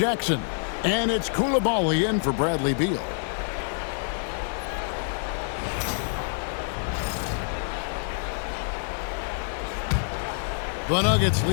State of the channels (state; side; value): silent; right; 60 dB below the other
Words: And it's Coulibaly in for Bradley Beal. The Nuggets